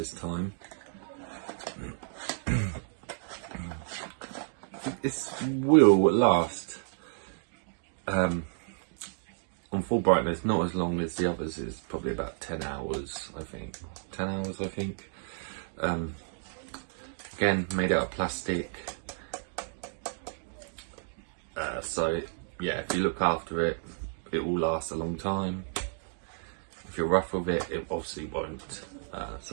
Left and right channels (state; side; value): silent; left; digital silence